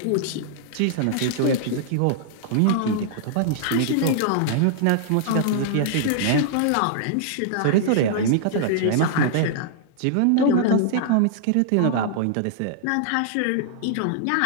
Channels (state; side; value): different; both; correlation -0.01